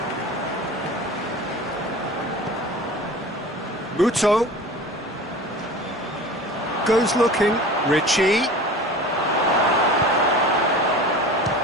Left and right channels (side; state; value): both; normal; correlation 0.38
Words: Muto goes looking. Ritchie.